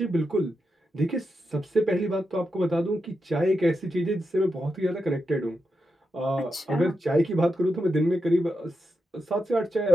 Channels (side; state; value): both; normal; correlation 0.87